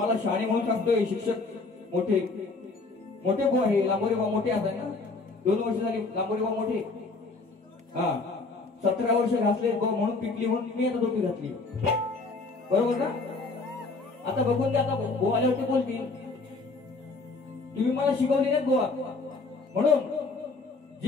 शाणे म्हणून सांगतोय. शिक्षक मोठे मोठे बुवा आहे लांबोरे बुवा मोठे असतात ना. 2 वर्ष झाली लांबोरे बुवा मोठे. हा 17 वर्ष घातले म्हणून पिकली म्हणून मी आता टोपी घातली बरोबर का. आता बघून द्या आता बुवा आल्यावरती बोलतील तुम्ही मला शिकवले नाहीत बुवा. म्हणून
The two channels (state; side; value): quieter; right; 3.7 dB